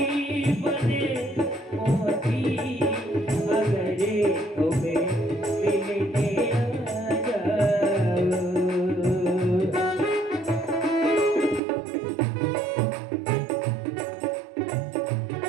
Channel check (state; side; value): drops out; left; at 11.6 s